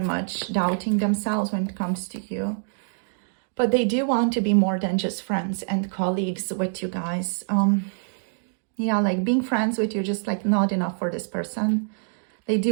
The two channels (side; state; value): left; silent; digital silence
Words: much doubting themselves when it comes to you. But they do want to be more than just friends and colleagues with you guys. Yeah, like being friends with you just like not enough for this person. They